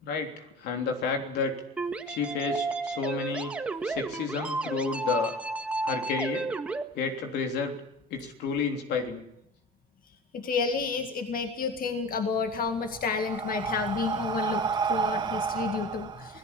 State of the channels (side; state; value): both; normal; correlation 0.36